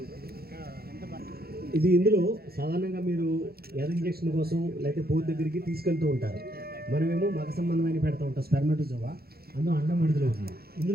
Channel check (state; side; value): late; left; 0.45 ms